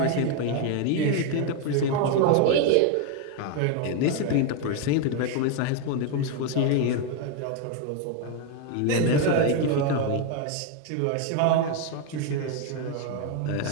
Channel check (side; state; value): both; different; correlation 0.01